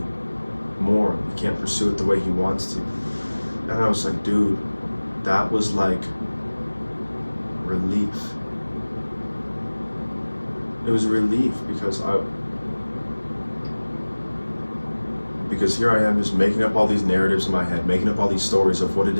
more. He can't pursue it the way he wants to. And I was like, dude, that was like relief. It was relief because here I am just making up all these narratives in my head, making up all these stories of what it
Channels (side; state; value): both; inverted; correlation -1.00